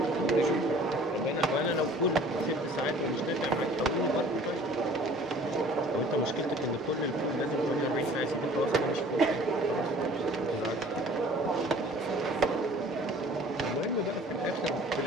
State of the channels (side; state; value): both; normal; correlation 0.50